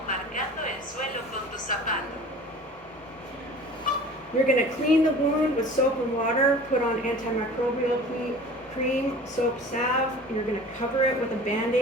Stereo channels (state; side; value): normal; both; correlation 0.42